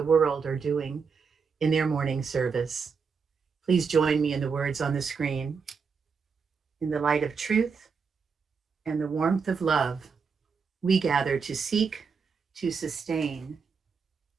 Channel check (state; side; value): quieter; left; 5.6 dB